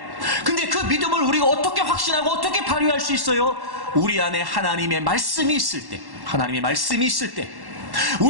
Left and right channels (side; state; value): left; late; 1.1 ms